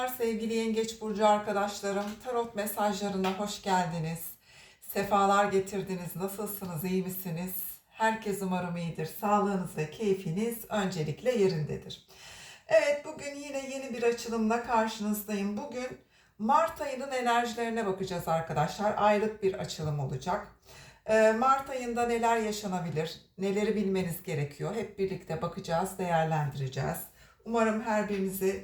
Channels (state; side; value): identical; both; correlation 1.00